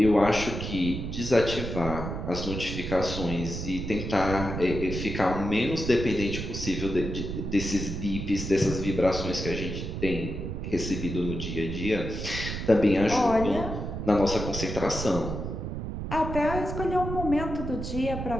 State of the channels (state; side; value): noise; right; rumble, 5 dB below the sound